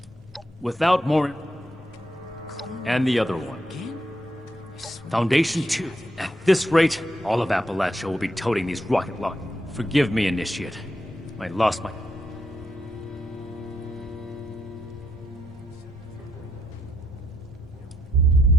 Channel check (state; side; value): normal; both; correlation 0.78